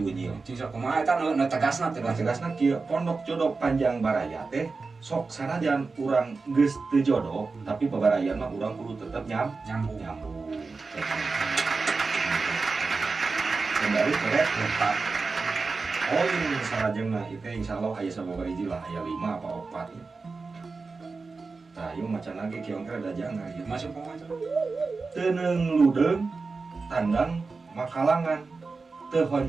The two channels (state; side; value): quieter; left; 4.2 dB